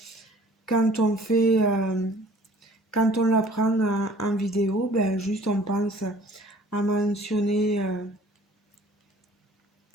quand on fait, quand on la prend en vidéo, ben juste on pense à mentionner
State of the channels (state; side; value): normal; both; correlation 0.52